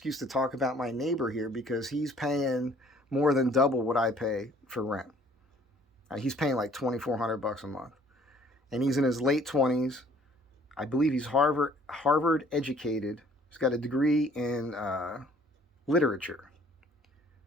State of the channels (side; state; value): both; normal; correlation 0.58